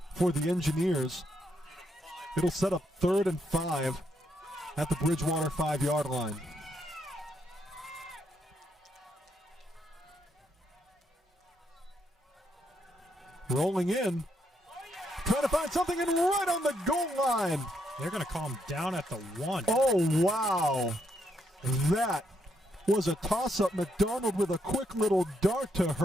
for the Engineers. It'll set up 3rd and 5 at the Bridgewater 5-yard line. Rolling in, trying to find something, and right on the goal line. They're going to call him down at the 1. Oh, wow. That was a toss-up. McDonald with a quick little dart to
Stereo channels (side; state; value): both; normal; correlation 0.77